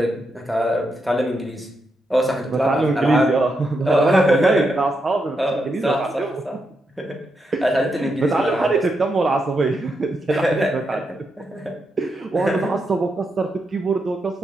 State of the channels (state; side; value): normal; both; correlation 0.83